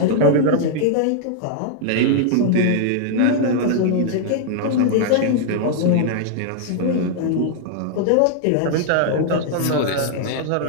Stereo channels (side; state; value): both; different; correlation -0.01